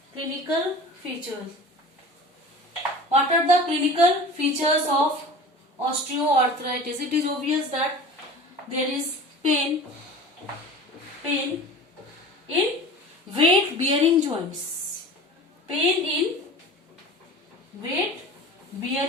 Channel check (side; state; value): both; normal; correlation 0.38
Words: Clinical features. What are the clinical features of osteoarthritis? It is obvious that there is pain in weight bearing joints. Pain in weight